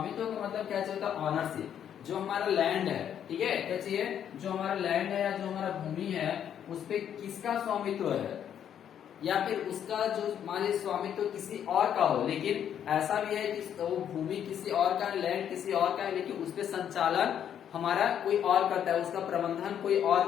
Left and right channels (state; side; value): quieter; right; 9.3 dB